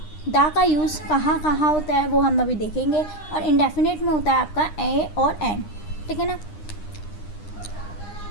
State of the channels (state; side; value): late; right; 9.8 ms